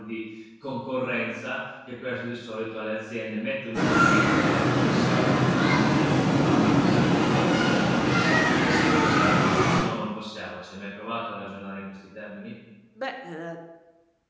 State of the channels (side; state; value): both; identical; correlation 1.00